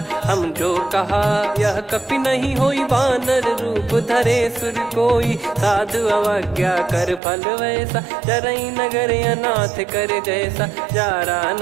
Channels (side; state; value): left; drops out; at 7.2 s